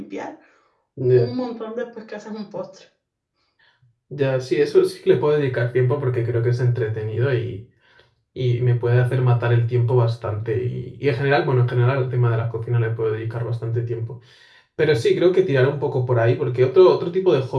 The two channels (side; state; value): both; identical; correlation 1.00